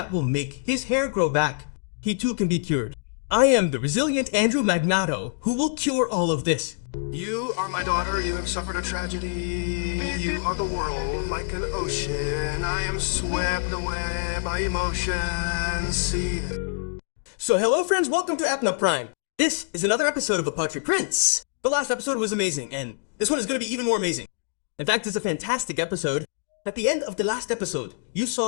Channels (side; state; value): right; silent; digital silence